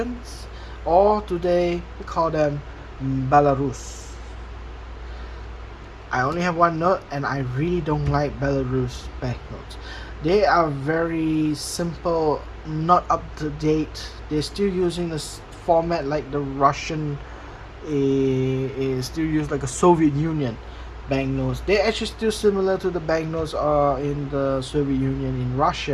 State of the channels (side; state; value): both; identical; correlation 1.00